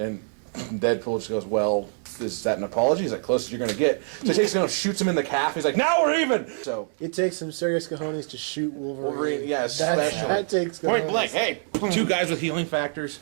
Deadpool just goes, "Well, is that an apology? Is that close as you're going to get?" So he takes him and shoots him in the calf. He's like, "Now we're even!" So It takes some serious cojones to shoot Wolverine. yeah, especially. That takes cojones. Point blank. Hey. Two guys with healing factors.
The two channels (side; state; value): left; silent; 62 dB below the other